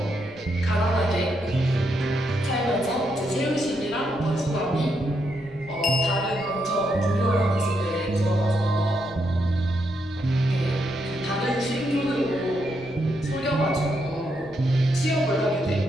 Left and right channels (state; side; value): noise; left; rumble, 21 dB below the sound